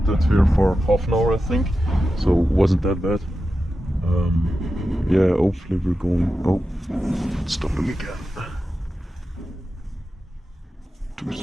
here for half an hour I think, so it wasn't that bad. Yeah, hopefully we're going... Oh, stop them again. Too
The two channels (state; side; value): normal; both; correlation 0.91